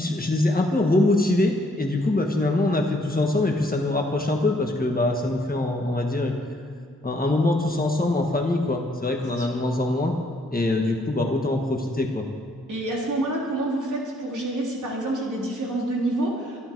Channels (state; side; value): normal; both; correlation 0.67